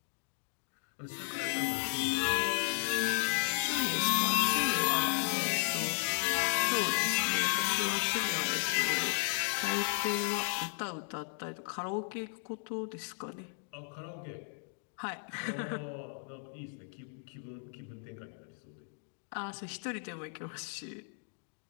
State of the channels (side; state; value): right; silent; 55 dB below the other